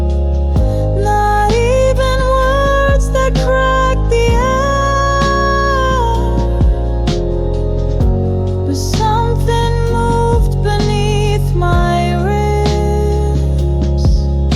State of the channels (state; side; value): identical; both; correlation 1.00